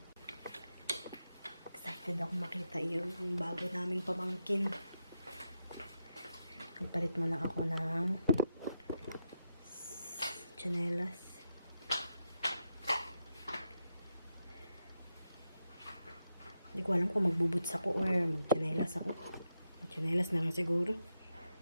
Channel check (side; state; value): both; inverted; correlation -0.85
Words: Excited ako makita yung bago naming pamangkin. Nagpalit muna ako ng tsinelas. Hindi ko alam kung magbubuts ako or magtsinelas ako. Magtsinelas na lang siguro.